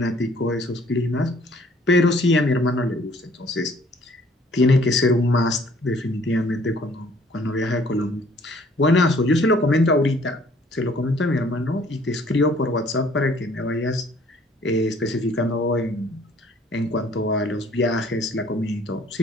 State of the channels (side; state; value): both; normal; correlation 0.58